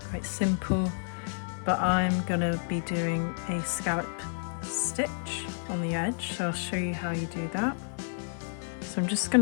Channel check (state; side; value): silent; right; digital silence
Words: simple, but I'm gonna be doing a scallop stitch on the edge, so I'll show you how you do that. So I'm just going